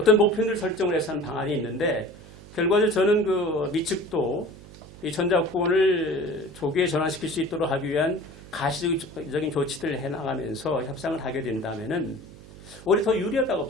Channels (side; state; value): right; noise; hum, 18 dB below the sound